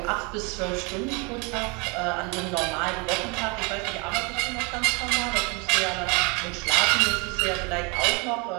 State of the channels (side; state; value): left; quieter; 30.0 dB